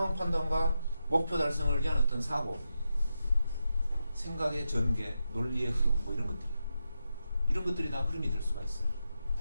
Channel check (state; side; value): inverted; both; correlation -0.87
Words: 판단과 목표 달성을 위한 어떤 사고, 생각의 전개, 논리의 흐름, 뭐 이런 것들이, 이런 것들이 다 흐름이 될 수가 있어요.